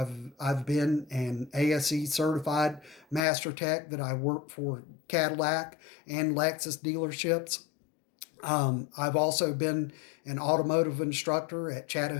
I've been an ASE certified master tech that I worked for Cadillac and Lexus dealerships. I've also been an automotive instructor at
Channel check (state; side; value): drops out; right; at 3.2 s